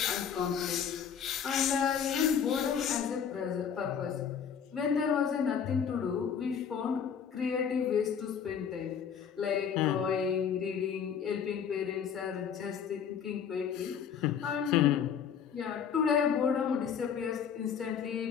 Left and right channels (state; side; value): quieter; right; 7.6 dB